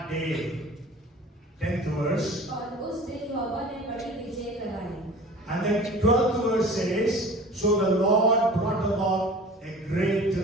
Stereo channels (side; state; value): both; normal; correlation 0.42